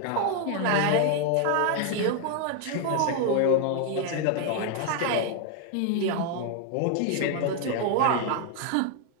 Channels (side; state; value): both; different; correlation 0.01